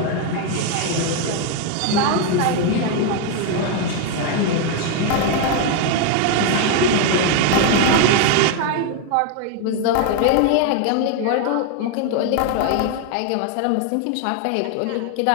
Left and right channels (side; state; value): both; different; correlation 0.01